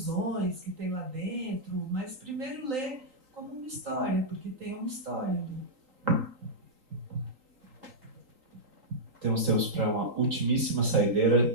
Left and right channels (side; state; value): left; late; 3.9 ms